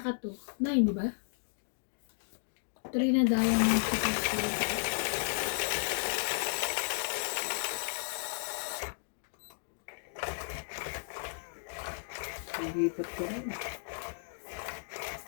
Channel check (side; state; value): right; silent; digital silence